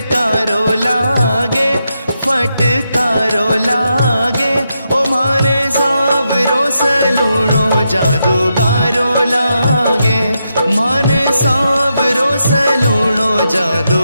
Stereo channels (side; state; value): both; inverted; correlation -0.84